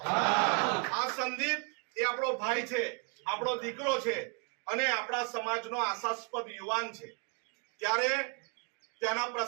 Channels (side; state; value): left; quieter; 36.3 dB